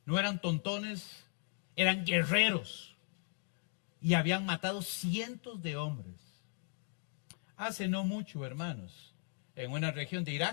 no eran tontones, eran guerreros. Y habían matado cientos de hombres. Hace no mucho, hermanos, en una región de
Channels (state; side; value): silent; right; 53 dB below the other